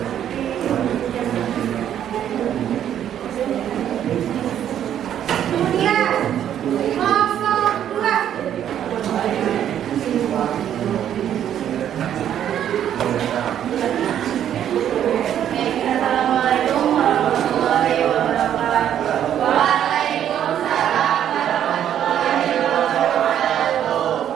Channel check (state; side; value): quieter; left; 10.2 dB